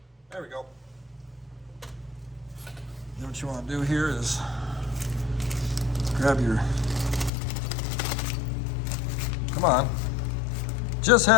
There we go. Then what you want to do here is grab your, come on, just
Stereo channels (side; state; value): right; drops out; at 7.3 s